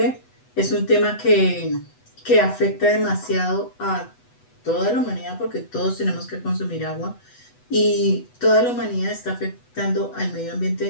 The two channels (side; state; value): right; late; 8.1 ms